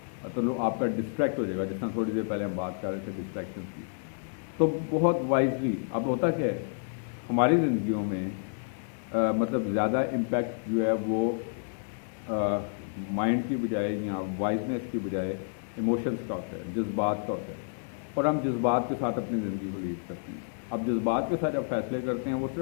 تو آپ کا ڈسٹریکٹ ہو جائے گا. جس طرح تھوڑی دیر پہلے ہم بات کر رہے تھے ڈسٹریکشنس کی. تو بہت وائزلی اب ہوتا کیا ہے ہماری زندگیوں میں مطلب زیادہ امپیکٹ جو ہے وہ مائنڈ کی بجائے یا وائزنس کی بجائے ایموشنس کا ہوتا ہے، جذبات کا ہوتا ہے. اور ہم جذبات کے ساتھ اپنی زندگی کو لیڈ کرتے ہیں. اب جذبات کے ساتھ جب فیصلے کرتے ہیں وہ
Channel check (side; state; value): right; silent; 58 dB below the other